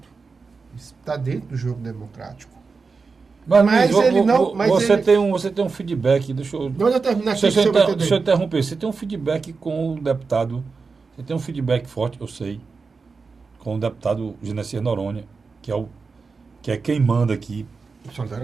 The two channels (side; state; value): left; quieter; 4.6 dB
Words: Está dentro do jogo democrático. Mas ele não. Você tem um feedback. Deixa eu terminar aqui. Deixa eu interromper. Você tem um feedback com o deputado. Você tem um feedback forte, eu sei, com o deputado Genesias Noronha, que é quem manda aqui.